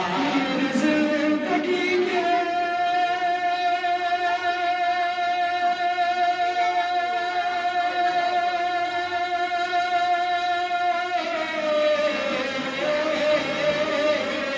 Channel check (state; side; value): identical; both; correlation 1.00